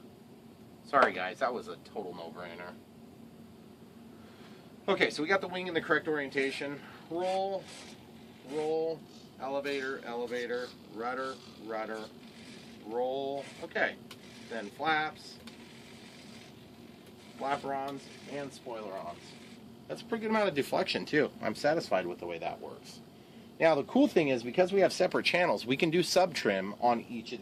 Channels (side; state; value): both; identical; correlation 1.00